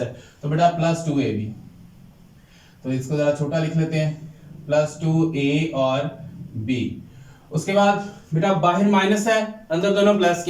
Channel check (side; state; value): both; identical; correlation 1.00